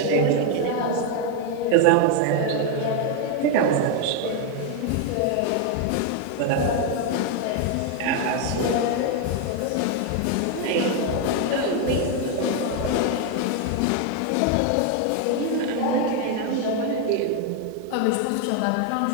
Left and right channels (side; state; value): both; different; correlation 0.01